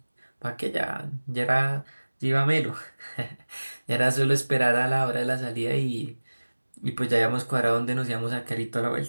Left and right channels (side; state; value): both; inverted; correlation -1.00